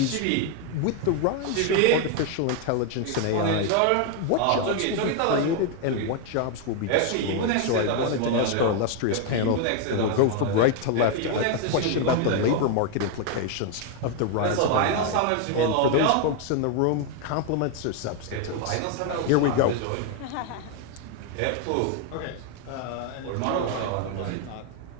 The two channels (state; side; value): different; both; correlation 0.01